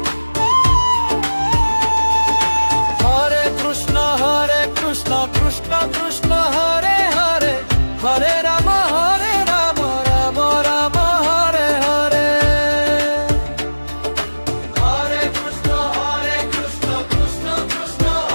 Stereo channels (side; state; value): both; inverted; correlation -1.00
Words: Krishna Krishna Hare Hare, Hare Ram Ram Ram Hare Hare. Hare Krishna Krishna Krishna